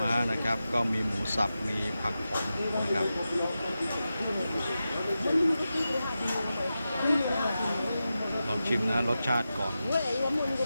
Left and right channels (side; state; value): both; inverted; correlation -0.92